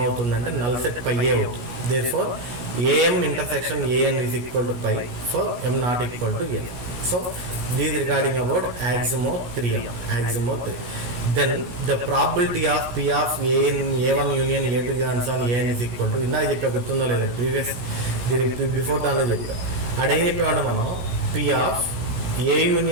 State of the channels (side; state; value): left; late; 17 ms